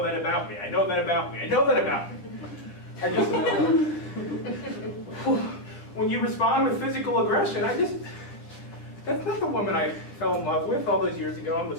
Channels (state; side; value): late; right; 9.9 ms